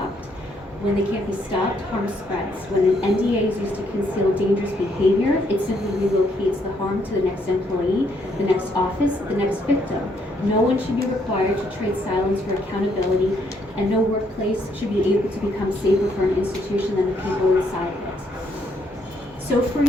When they can't be stopped, harm spreads. When an NDA is used to conceal dangerous behavior, it simply relocates the harm to the next employee, the next office, the next victim. No one should be required to trade silence for accountability, and no workplace should be able to become safer for an institution than the people inside of it. So for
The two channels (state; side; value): normal; both; correlation 0.72